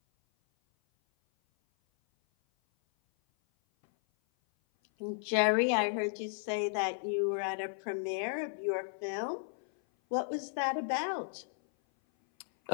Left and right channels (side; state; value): right; silent; 55 dB below the other